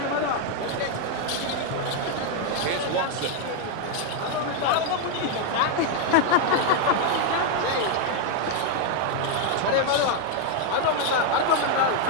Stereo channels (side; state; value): both; different; correlation 0.01